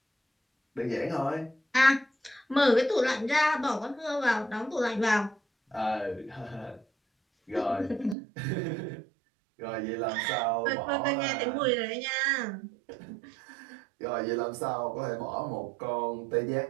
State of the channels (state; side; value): drops out; left; at 8.2 s